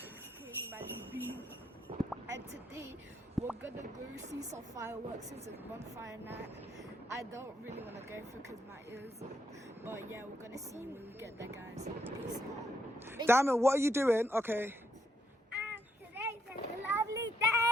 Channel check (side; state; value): both; normal; correlation 0.76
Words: Kingmali, and today we're gonna go see some fireworks since it's bonfire night. I don't really want to go through because my ears, but yeah, we're gonna see when we get there, guys. Peace. Diamond, what are you doing? Okay. Today's a lovely